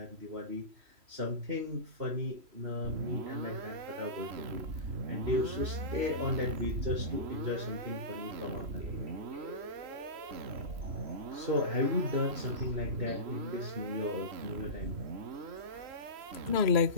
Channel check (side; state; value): left; late; 3.0 ms